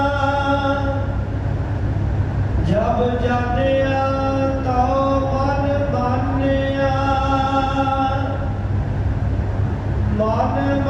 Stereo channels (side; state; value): both; identical; correlation 1.00